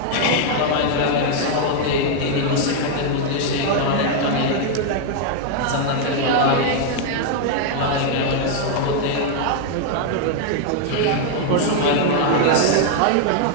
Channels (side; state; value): both; different; correlation 0.00